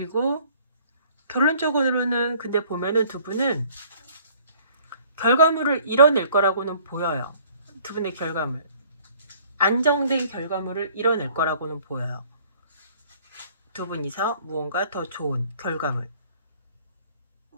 결론적으로는 근데 보면은 두 분은 결과물을 이뤄낼 거라고는 보여요. 두 분의 결과물. 안정된 결과물을 이뤄낼 거라고는 보여요. 두 분이서 무언가 더 좋은 결과물.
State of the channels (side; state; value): both; inverted; correlation -0.56